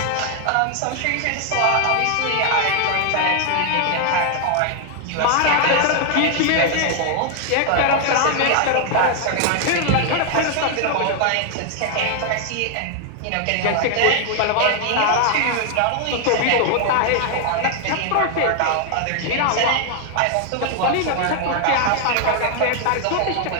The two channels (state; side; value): different; both; correlation 0.00